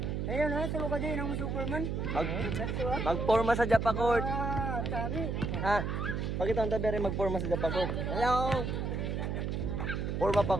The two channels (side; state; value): right; noise; hum, 1 dB below the sound